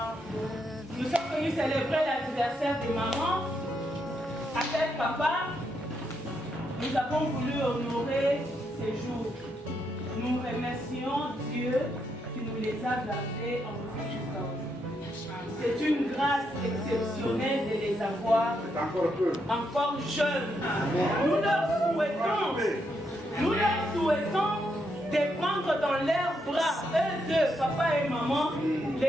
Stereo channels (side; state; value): both; normal; correlation 0.79